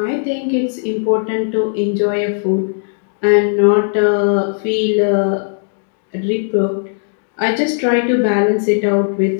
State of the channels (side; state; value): right; silent; digital silence